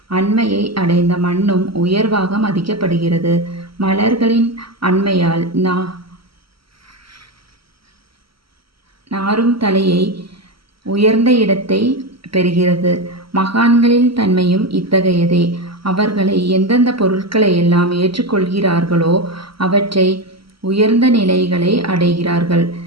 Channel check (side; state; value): left; late; 0.75 ms